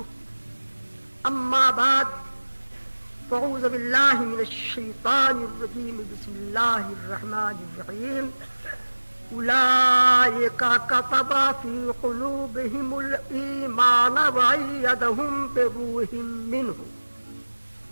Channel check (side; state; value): both; inverted; correlation -1.00